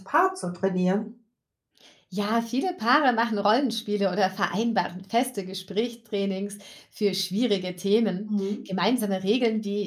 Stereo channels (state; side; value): identical; both; correlation 1.00